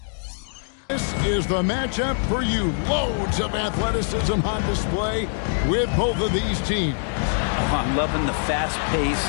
this is the matchup for you. Loads of athleticism on display with both of these teams. Oh, I'm loving the fast pace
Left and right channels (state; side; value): silent; right; digital silence